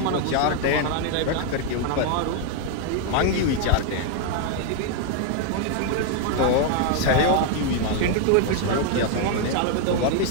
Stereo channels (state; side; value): different; both; correlation 0.00